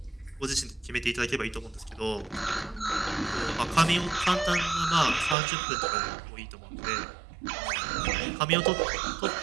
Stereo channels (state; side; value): drops out; left; at 5.4 s